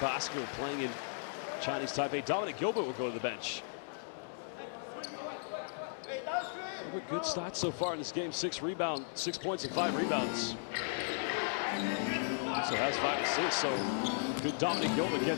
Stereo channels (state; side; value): silent; right; digital silence